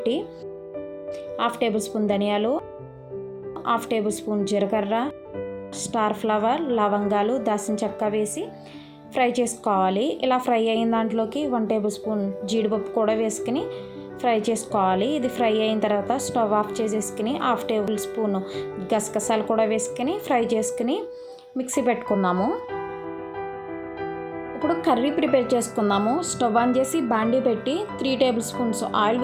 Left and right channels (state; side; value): identical; both; correlation 1.00